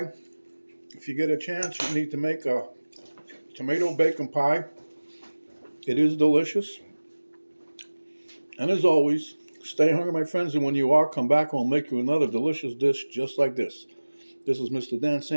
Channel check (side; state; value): both; inverted; correlation -1.00